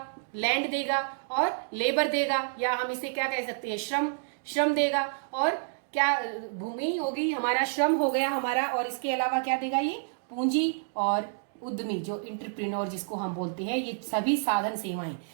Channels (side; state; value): left; silent; digital silence